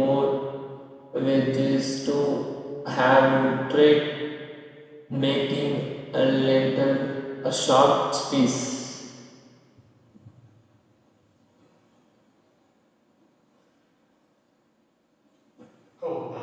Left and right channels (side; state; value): both; identical; correlation 1.00